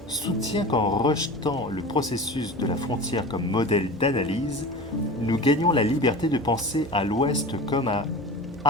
soutient qu'en rejetant le processus de la frontière comme modèle d'analyse, nous gagnons la liberté de penser à l'Ouest comme à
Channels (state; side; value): normal; both; correlation 0.34